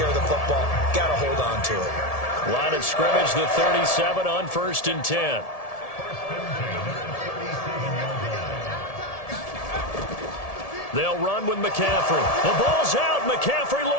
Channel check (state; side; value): late; right; 1.7 ms